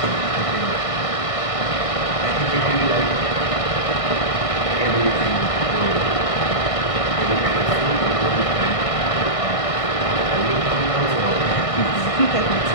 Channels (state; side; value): late; right; 1.6 ms